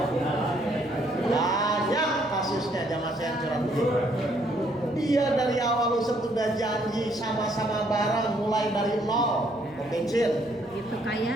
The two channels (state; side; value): noise; left; hum, 24 dB below the sound